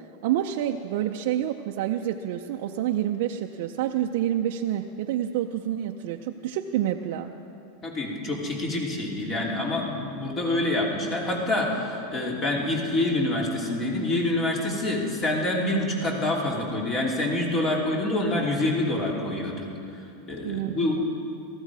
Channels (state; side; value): normal; both; correlation 0.17